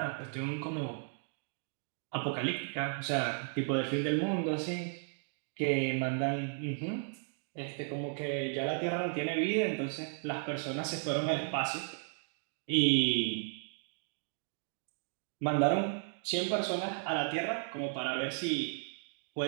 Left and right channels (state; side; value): silent; left; 55 dB below the other